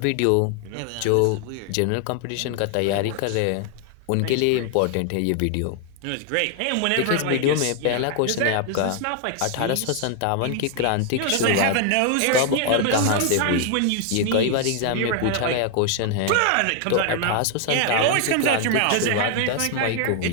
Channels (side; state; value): both; different; correlation 0.00